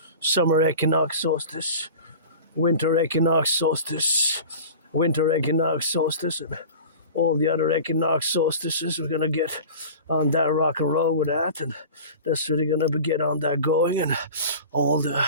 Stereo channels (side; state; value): both; inverted; correlation -0.37